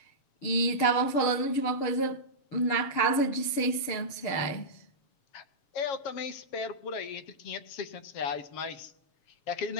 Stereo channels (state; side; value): late; right; 6.6 ms